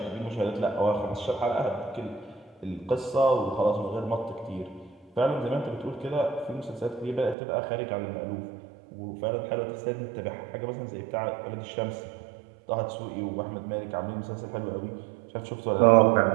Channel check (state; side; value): drops out; left; at 7.4 s